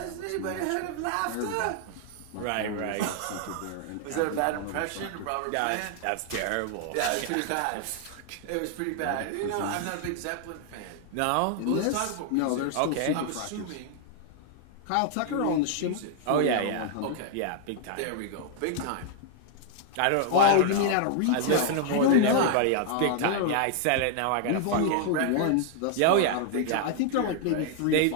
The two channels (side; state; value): both; different; correlation 0.00